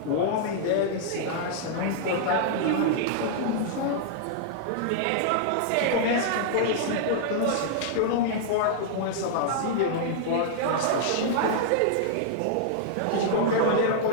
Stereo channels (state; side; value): different; both; correlation -0.01